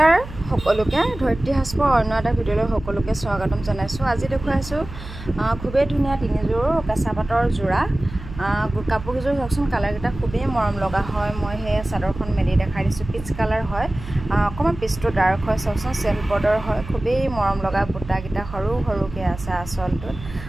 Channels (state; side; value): noise; right; hum, 13 dB below the sound